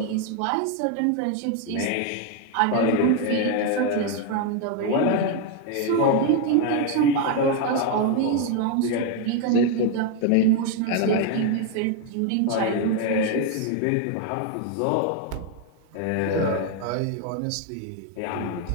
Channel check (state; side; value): different; both; correlation 0.01